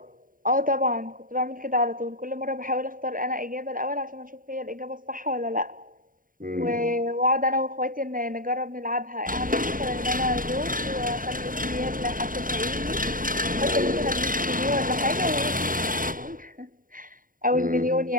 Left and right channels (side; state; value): left; late; 0.40 ms